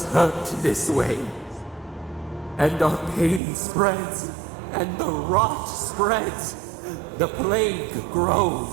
hurt this way. And our pain spreads, and the rot spreads. The plague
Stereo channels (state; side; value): drops out; left; at 3.4 s